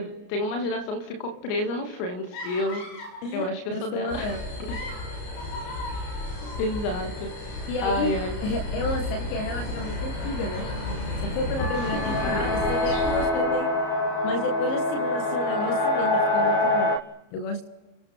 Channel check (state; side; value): late; right; 33 ms